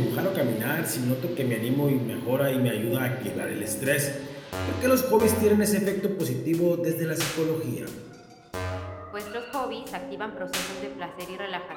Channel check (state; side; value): identical; both; correlation 1.00